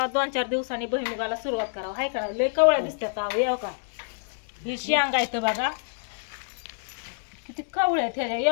2-4 दिवसांनी भुईमुगाला सुरुवात करावं हाय का. लय कवळ्या दिसतात येऊ का. ही शेंगा येतं बघा किती कवळ्या ह्याच्या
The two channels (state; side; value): silent; right; digital silence